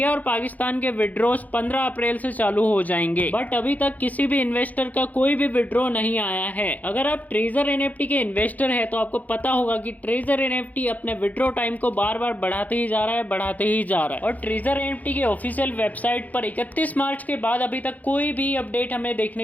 और पाकिस्तान के विड्रॉस 15 अप्रैल से चालू हो जाएंगे। बट अभी तक किसी भी इन्वेस्टर का कोई भी विड्रॉ नहीं आया है। अगर आप ट्रेजर एनएफटी के इन्वेस्टर हैं तो आपको पता होगा कि ट्रेजर एनएफटी अपने विड्रॉ टाइम को बार बार बढ़ाते ही जा रहा है और ट्रेजर एनएफटी के ऑफिशियल वेबसाइट पर 31 मार्च के बाद अभी तक कोई भी अपडेट हमें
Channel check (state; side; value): late; right; 0.078 ms